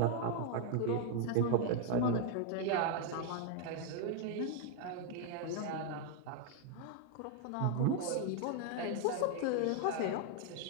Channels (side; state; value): both; different; correlation 0.00